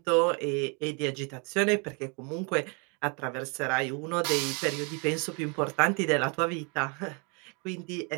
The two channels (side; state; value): left; quieter; 33.9 dB